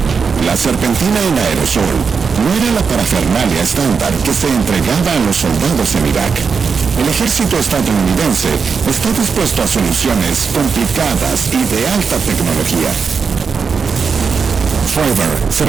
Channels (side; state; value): left; quieter; 5.6 dB